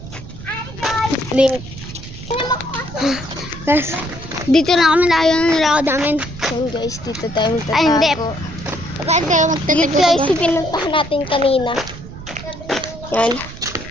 link. Guys, dito na kami tayo ng nilakad namin. Yan guys, dito tayo magtatago. Ay, hindi. Bakit kayo magtatago? Dito guys, pinuntahan natin kanina. Yan.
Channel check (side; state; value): right; noise; rumble, 13 dB below the sound